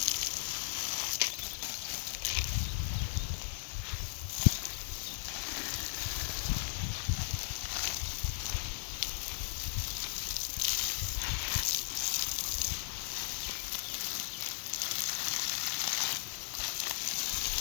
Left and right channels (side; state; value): right; silent; digital silence